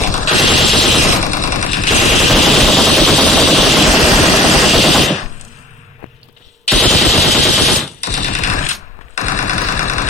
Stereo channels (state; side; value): normal; both; correlation 0.48